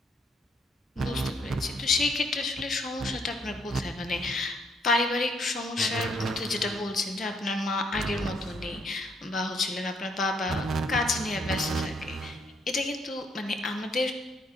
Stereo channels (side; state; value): both; normal; correlation 0.70